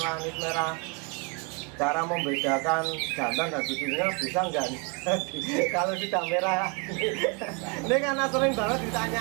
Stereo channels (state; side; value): quieter; left; 32.4 dB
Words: anis merah, cara membedakan jantan dan betina bisa nggak nih kalau sudah merah? Ini karena sering banget